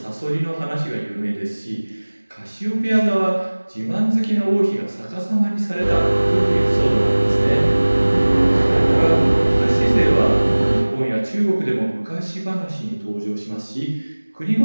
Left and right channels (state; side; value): inverted; both; correlation -1.00